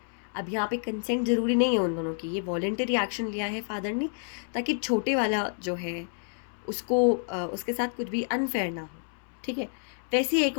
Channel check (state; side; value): silent; right; 59 dB below the other